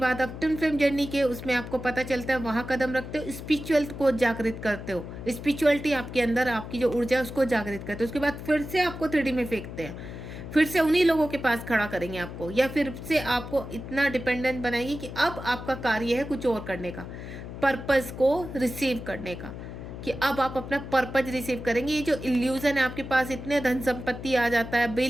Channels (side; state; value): left; noise; hum, 10 dB below the sound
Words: आप ट्विन फ्लेम जर्नी के उसमें आपको पता चलता है, वहाँ कदम रखते हो, स्पिरिचुअल को जागृत करते हो, स्पिरिचुअलिटी आपके अंदर, आपकी जो ऊर्जा है उसको जागृत करते हो। उसके बाद फिर से आपको 3D में फेंकते हैं, फिर से उन्हीं लोगों के पास खड़ा करेंगे आपको, या फिर से आपको इतना डिपेंडेंट बनाएंगे कि अब आपका कार्य है कुछ और करने का, पर्पस को रिसीव करने का, कि अब आप अपना पर्पज रिसीव करेंगे। ये जो इल्यूजन है आपके पास, इतने धन संपत्ति आ जाता है,